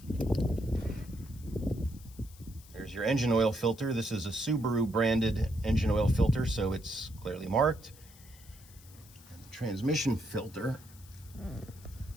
There's your engine oil filter. This is a Subaru branded engine oil filter, so it's clearly marked. And the transmission filter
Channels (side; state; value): left; noise; hiss, 23 dB below the sound